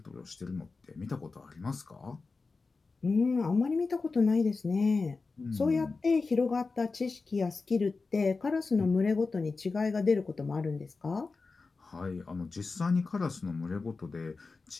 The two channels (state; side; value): quieter; right; 4.1 dB